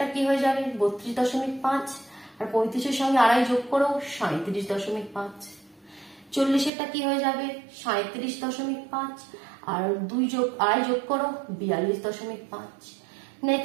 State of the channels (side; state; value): left; drops out; at 6.7 s